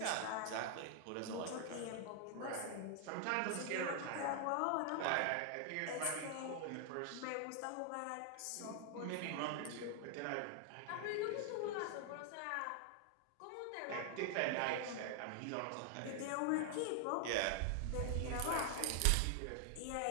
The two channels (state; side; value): different; both; correlation 0.00